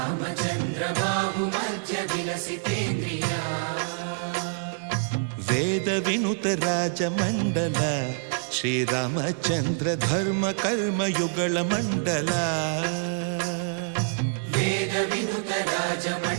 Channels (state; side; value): silent; left; 61 dB below the other